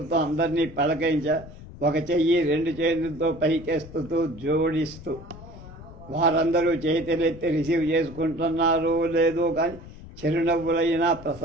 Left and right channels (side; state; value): left; noise; rumble, 16 dB below the sound